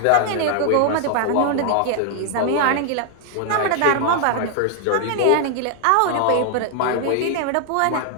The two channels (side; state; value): both; different; correlation 0.00